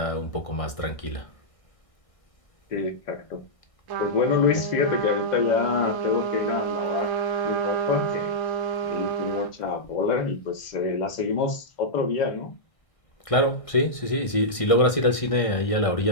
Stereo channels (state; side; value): late; right; 1.6 ms